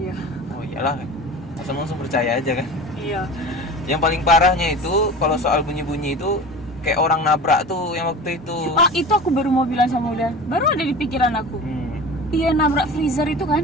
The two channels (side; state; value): both; normal; correlation 0.35